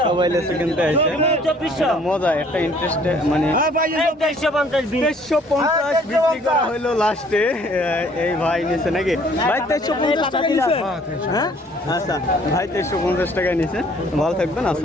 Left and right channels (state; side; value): normal; both; correlation 0.58